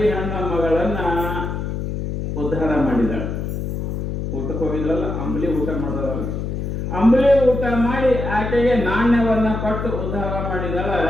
ಹೆಣ್ಣ ಮಗಳನ್ನ ಉದ್ಧಾರ ಮಾಡಿದಾಳೆ. ಊಟಕ್ಕೆ ಹೋಗಿದ್ರಲ್ಲ, ಅಂಬಲಿ ಊಟ ಮಾಡಿದವಲ್ಲ, ಅಂಬಲಿ ಊಟ ಮಾಡಿ ಆಕೆಗೆ ನಾಣ್ಯವನ್ನ ಕೊಟ್ಟು ಉದ್ಧಾರ ಮಾಡಿದಾಳ.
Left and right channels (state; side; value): noise; left; hum, 3 dB below the sound